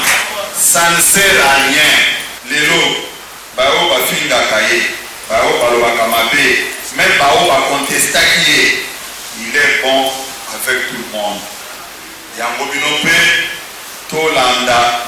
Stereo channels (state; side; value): identical; both; correlation 1.00